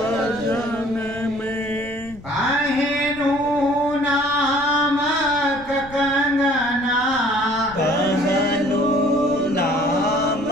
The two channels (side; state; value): left; noise; rumble, 19 dB below the sound